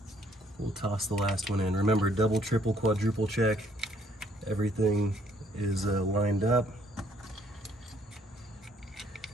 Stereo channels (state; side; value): normal; both; correlation 0.65